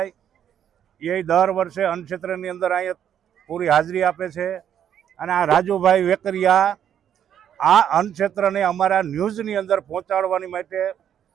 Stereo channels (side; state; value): left; quieter; 9.5 dB